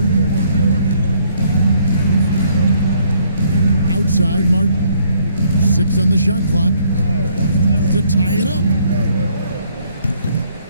Outside, Martin. 6 on the shot clock to tie it up.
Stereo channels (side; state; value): both; inverted; correlation -0.66